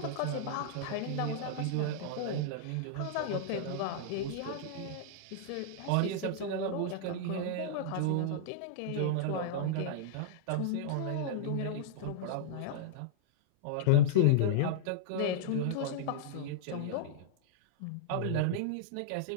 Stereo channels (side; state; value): both; different; correlation -0.01